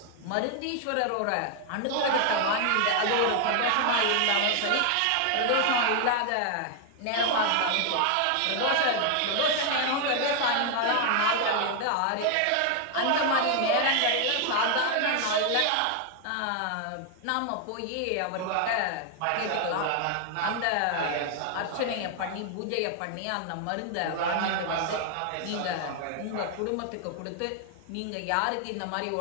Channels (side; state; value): both; different; correlation 0.00